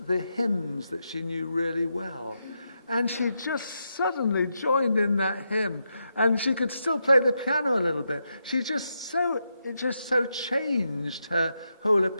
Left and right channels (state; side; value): inverted; both; correlation -0.84